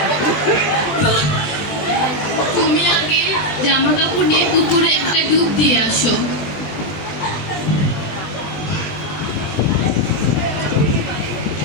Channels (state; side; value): late; right; 20 ms